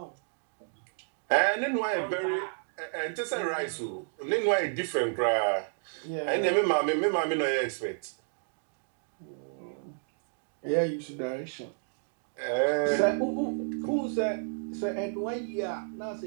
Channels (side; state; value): left; silent; digital silence